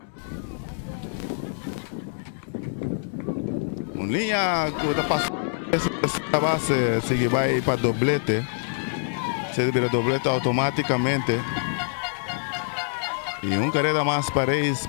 Linha que está passando essa base, se vai para doblete. Se vira doblete automaticamente. E carrera mais para eles,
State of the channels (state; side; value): silent; right; digital silence